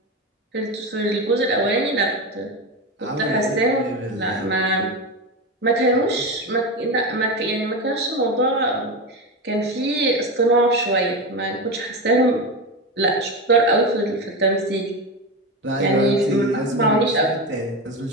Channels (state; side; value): normal; both; correlation 0.19